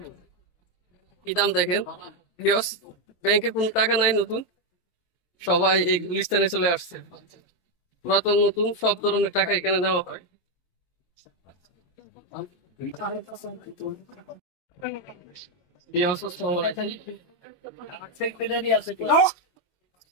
কি দাম দেখেন। ব্যাংকে কোনো টাকা নাই নতুন, সবাই এই গুলিস্তানে চলে আসছে। পুরাতন নতুন সব ধরনের টাকা এখানে নেওয়া হয়।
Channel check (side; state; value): right; late; 23 ms